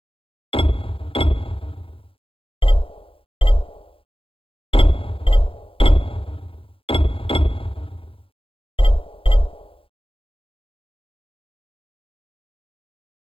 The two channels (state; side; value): late; right; 0.27 ms